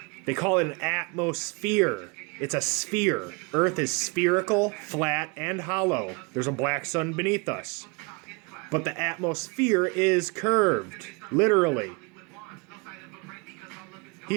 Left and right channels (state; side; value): quieter; left; 30.1 dB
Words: They call it an atmosphere. It's a sphere. Earth is spherical, flat, and hollow. There's a black sun beneath us. But the atmosphere is curved, literally. He